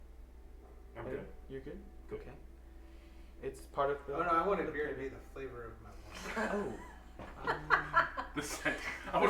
I'm good. You're good? Okay. It's part of the... Oh no, I wanted beer to be the flavor of my wine. Oh. The scent. I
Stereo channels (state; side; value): identical; both; correlation 1.00